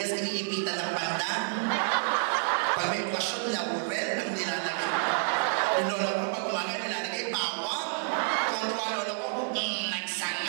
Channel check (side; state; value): left; silent; 58 dB below the other